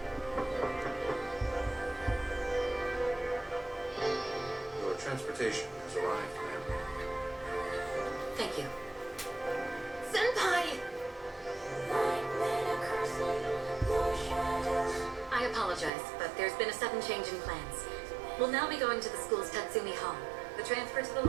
Your transportation has arrived, ma'am. Thank you. Senpai! I apologize, but there's been a sudden change in plans. We'll now be going to the school's Tatsumi Hall. The transfer to the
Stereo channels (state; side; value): drops out; left; at 15.9 s